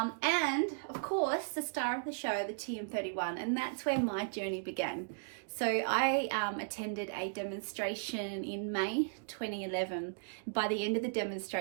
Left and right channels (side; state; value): left; silent; digital silence